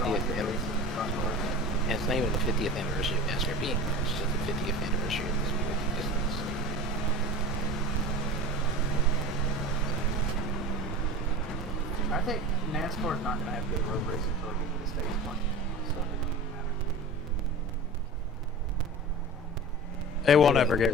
anniversary. And it's not even the 50th anniversary of NASCAR being there. It's just the 50th anniversary of this movie's existence. I think NASCAR is not going to have good road racing until they get to the States one. So it doesn't matter. They won't ever get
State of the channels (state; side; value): normal; both; correlation 0.33